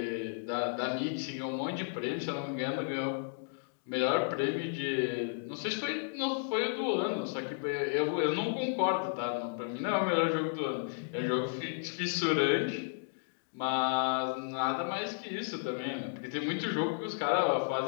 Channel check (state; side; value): silent; right; digital silence